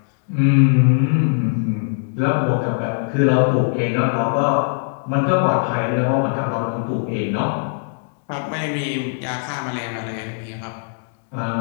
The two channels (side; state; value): right; silent; 65 dB below the other